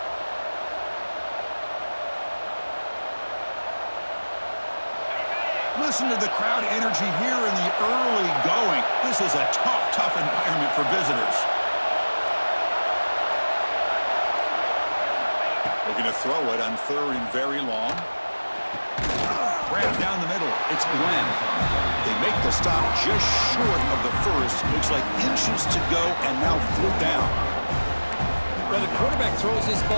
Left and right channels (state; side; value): inverted; both; correlation -1.00